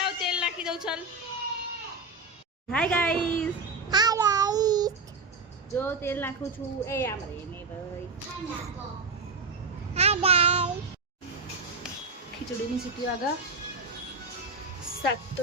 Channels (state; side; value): quieter; left; 3.7 dB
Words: તેલ નાખી દઉં, ચાલ। હાય ગાઈસ, હાય ગાઈસ જો તેલ નાખું છું। એ આમ રે ને ભાઈ। હાય ગાઈસ ખીચડીની સીટી વાગા। શાક તો